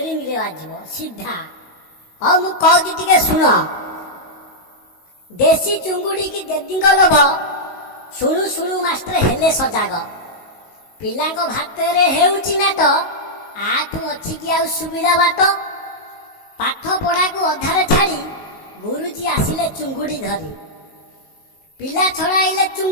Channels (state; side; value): late; right; 19 ms